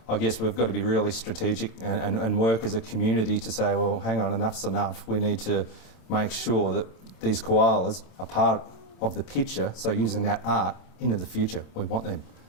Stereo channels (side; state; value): right; late; 27 ms